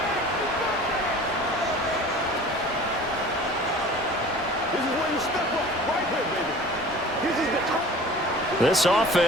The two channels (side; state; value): both; normal; correlation 0.43